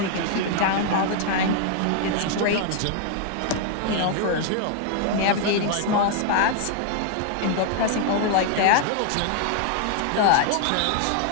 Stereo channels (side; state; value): both; different; correlation 0.00